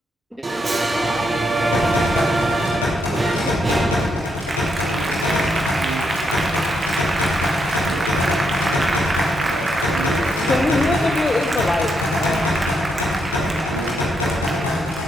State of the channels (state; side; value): normal; both; correlation 0.79